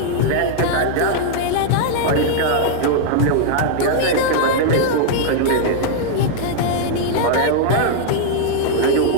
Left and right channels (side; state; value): both; different; correlation -0.01